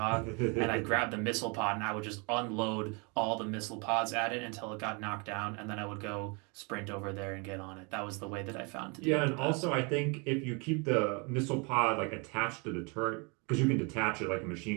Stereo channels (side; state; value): left; quieter; 31.7 dB